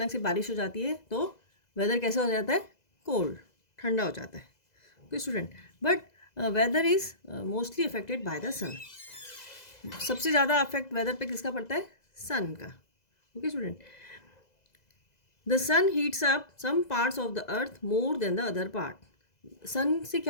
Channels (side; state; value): right; late; 2.0 ms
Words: से बारिश हो जाती है तो वेदर कैसा हो जाता है? कोल्ड, ठंडा हो जाता है। Okay student, but weather is mostly affected by the sun. सबसे ज़्यादा अफेक्ट वेदर पे किसका पड़ता है? सन का। Okay student, the sun heats up some parts of the earth more than the other part. Sun से